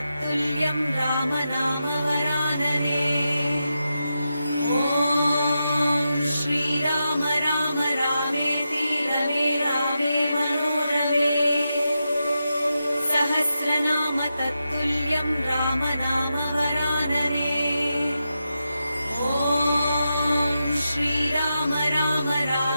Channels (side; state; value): both; inverted; correlation -0.88